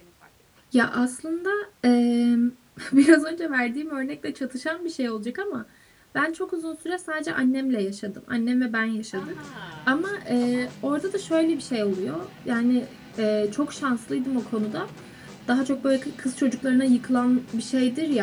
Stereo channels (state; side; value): identical; both; correlation 1.00